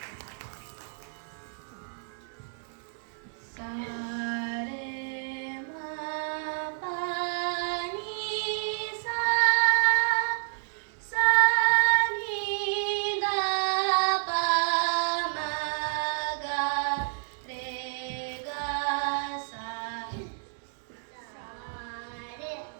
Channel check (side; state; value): left; silent; digital silence